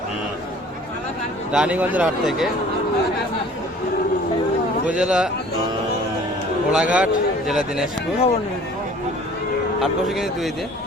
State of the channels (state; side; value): normal; both; correlation 0.50